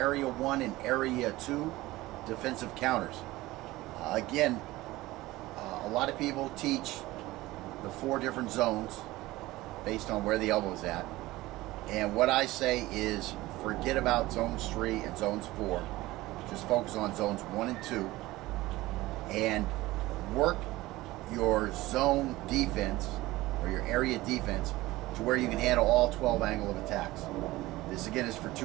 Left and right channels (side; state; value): left; quieter; 18.4 dB